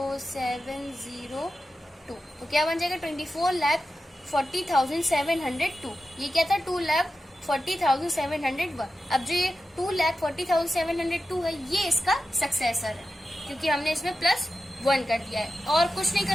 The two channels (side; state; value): both; normal; correlation 0.92